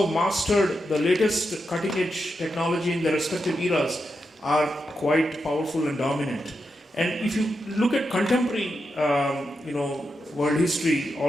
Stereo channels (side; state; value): both; normal; correlation 0.86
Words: have mastered the latest cutting edge technology in their respective eras are quite powerful and dominant. And if you look at contemporary world history